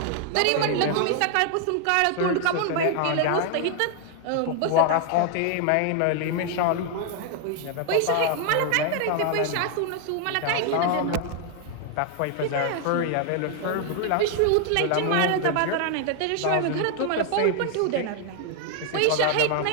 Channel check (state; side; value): different; both; correlation 0.00